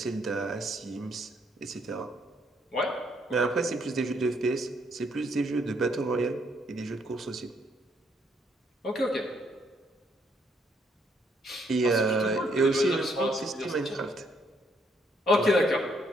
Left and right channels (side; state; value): both; normal; correlation 0.71